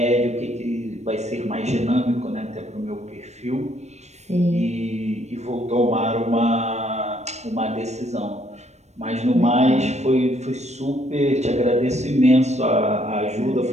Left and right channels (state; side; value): late; left; 0.32 ms